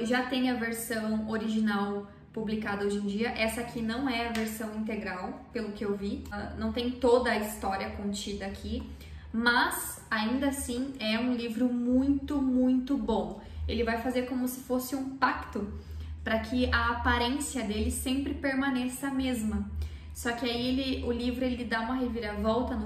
Já tem a versão original publicada hoje em dia. Essa aqui não é a versão integral, pelo que eu vi. Não tem toda a história contida aqui, mas ainda assim é um livro muito, muito bom. Ele vai fazer como se fosse um pacto para que a aparência dele sempre permaneça a mesma. Só que aí o livro ele dá uma reviravolta no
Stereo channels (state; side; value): identical; both; correlation 1.00